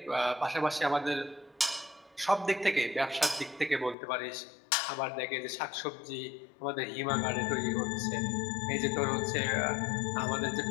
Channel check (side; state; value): right; drops out; at 4.0 s